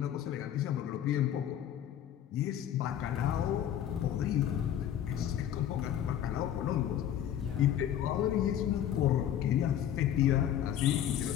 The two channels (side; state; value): right; quieter; 10.5 dB